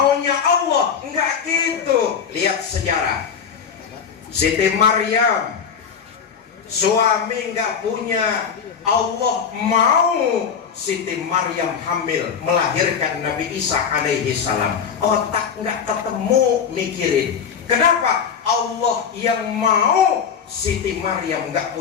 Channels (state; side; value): quieter; right; 7.0 dB